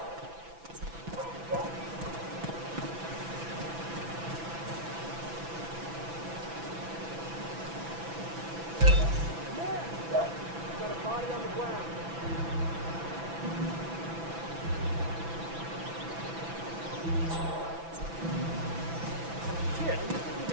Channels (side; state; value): left; late; 6.0 ms